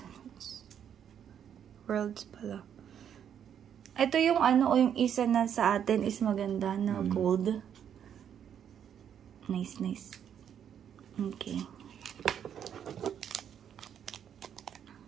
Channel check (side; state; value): left; quieter; 8.9 dB